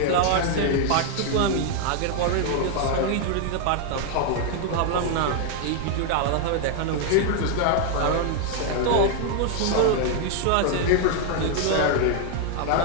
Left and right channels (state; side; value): different; both; correlation 0.00